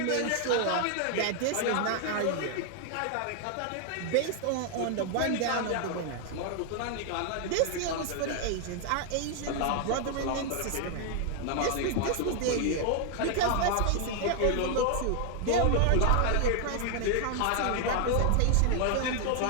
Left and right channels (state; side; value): different; both; correlation 0.00